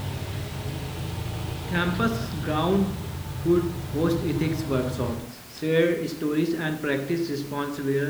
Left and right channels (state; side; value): identical; both; correlation 1.00